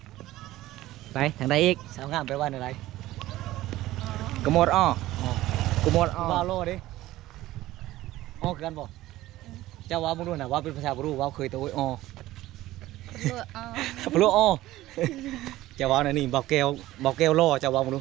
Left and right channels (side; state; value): left; quieter; 16.1 dB